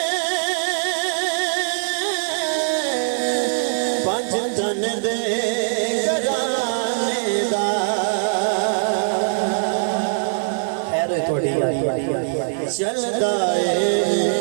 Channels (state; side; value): silent; left; digital silence